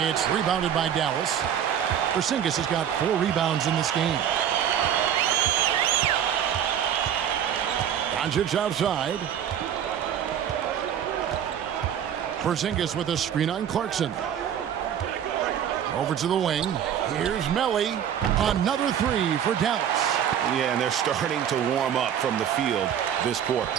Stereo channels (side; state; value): left; quieter; 9.3 dB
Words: It's rebounded by Dallas. Porzingis has got 4 rebounds in this game. Doncic outside. Porzingis with a screen on Clarkson. Over to the wing. Here's Melli. Another 3 for Dallas. Yeah, and they're starting to warm up from the field this quarter.